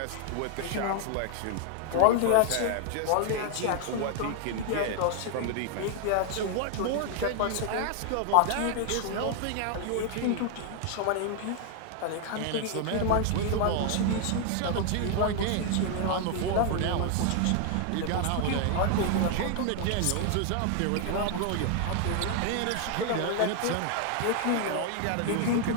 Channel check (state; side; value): different; both; correlation 0.00